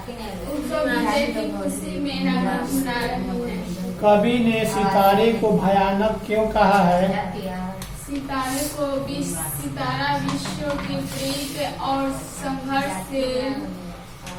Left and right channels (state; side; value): identical; both; correlation 1.00